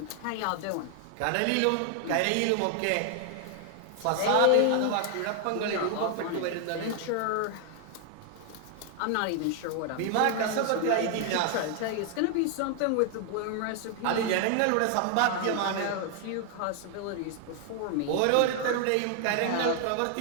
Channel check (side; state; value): both; different; correlation 0.00